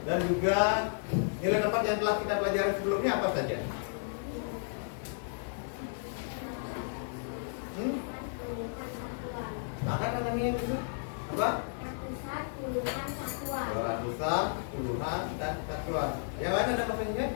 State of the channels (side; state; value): right; silent; 56 dB below the other